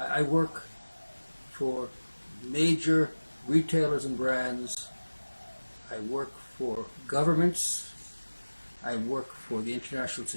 I work for major retailers and brands. I work for governments. I work for the international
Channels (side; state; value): both; inverted; correlation -1.00